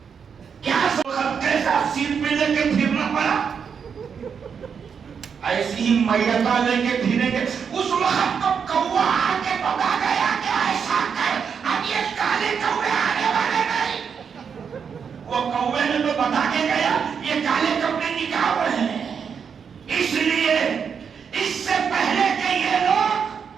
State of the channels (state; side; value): quieter; left; 6.7 dB